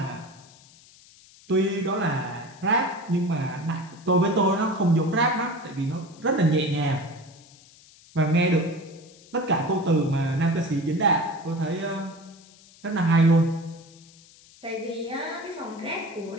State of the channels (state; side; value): noise; left; hiss, 25 dB below the sound